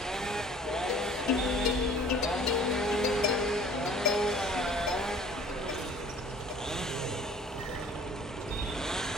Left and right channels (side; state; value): both; normal; correlation 0.50